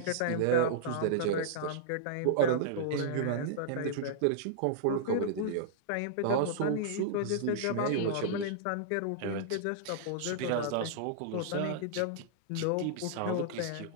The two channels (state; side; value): different; both; correlation -0.02